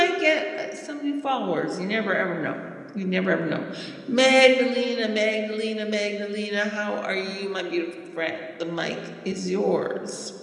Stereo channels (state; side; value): identical; both; correlation 1.00